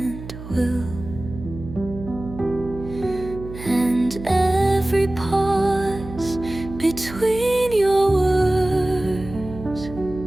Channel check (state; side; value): noise; right; hum, 12 dB below the sound